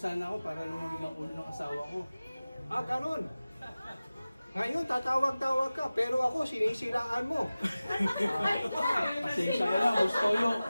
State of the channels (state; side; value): inverted; both; correlation -0.97